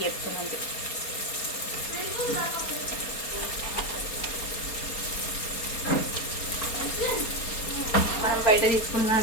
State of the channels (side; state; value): right; late; 4.3 ms